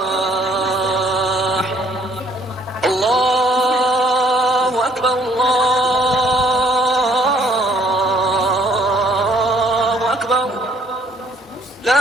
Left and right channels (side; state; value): both; normal; correlation 0.63